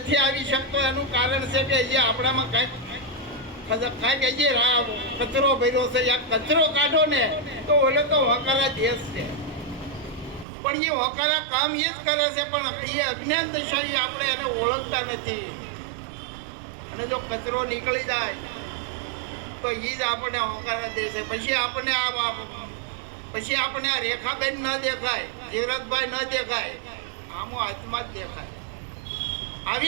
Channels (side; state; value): left; drops out; at 10.5 s